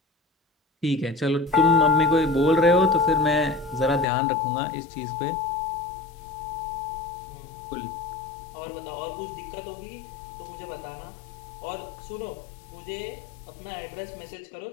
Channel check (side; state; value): right; drops out; at 4.0 s